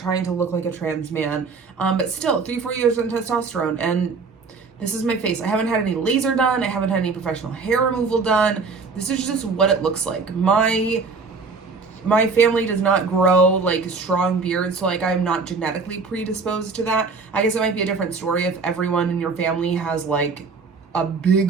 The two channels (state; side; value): quieter; left; 4.5 dB